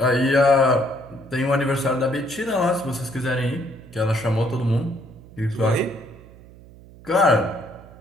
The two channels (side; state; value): right; noise; hum, 21 dB below the sound